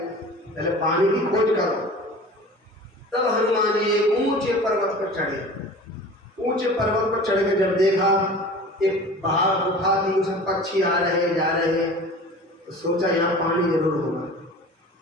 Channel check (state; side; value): normal; both; correlation 0.40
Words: पहले पानी की खोज करो। तब हनुमान जी एक ऊंचे पर्वत पर चढ़े। ऊंचे पर्वत पर चढ़ के जब देखा एक बाहर गुफा थी, उसमें पक्षी आ रहे जा रहे हैं, तो सोचा यहाँ पानी जरूर होगा।